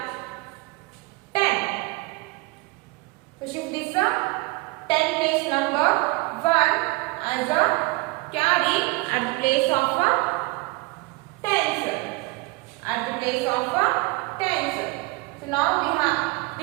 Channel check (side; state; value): left; quieter; 24.3 dB